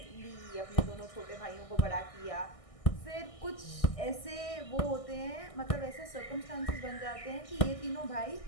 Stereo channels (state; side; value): late; right; 1.6 ms